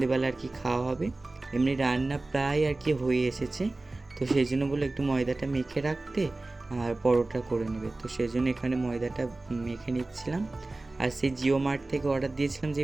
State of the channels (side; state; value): left; quieter; 3.1 dB